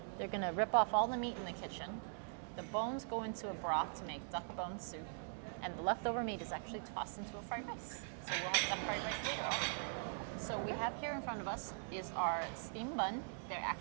they're gonna rip off all the meat in the kitchen. The bones go into a broth to make duck bone soup. And the leftover meat is actually tossed into a fried rice. So we'll have duck fried rice later also. So we have here in front of us is our steam bun. They're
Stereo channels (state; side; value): silent; left; digital silence